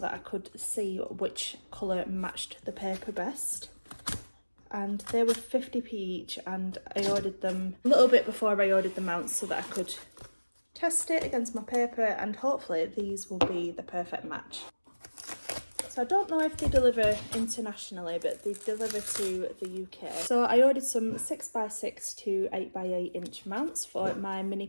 I could see which colour matched the paper best. And they were 50p each, and I ordered them a little bit before I ordered the mounts so that I could test it against my paper, and hopefully these will be the perfect match. So I don't know if they deliver internationally, but they deliver to the UK. So I ordered some 6x6 to 8x8 inch mounts for my mini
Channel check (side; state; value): both; inverted; correlation -1.00